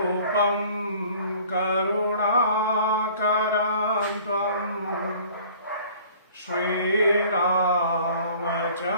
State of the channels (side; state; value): both; inverted; correlation -0.50